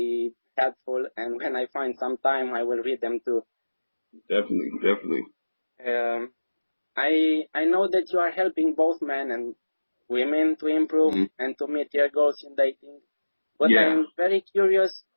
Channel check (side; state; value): both; inverted; correlation -1.00